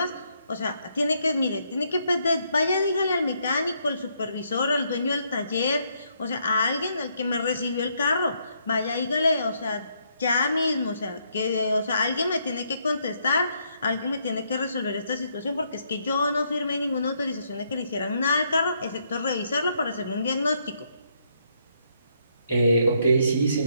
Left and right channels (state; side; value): inverted; both; correlation -0.74